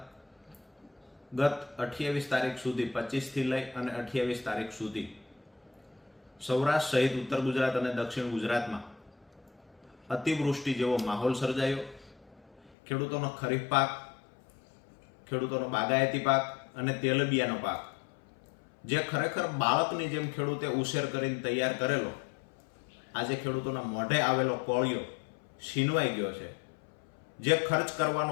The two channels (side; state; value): right; drops out; at 12.7 s